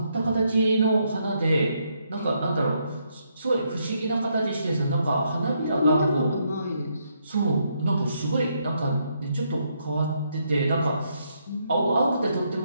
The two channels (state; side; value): inverted; both; correlation -0.76